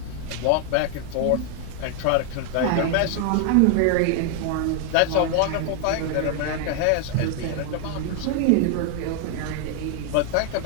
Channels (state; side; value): different; both; correlation 0.00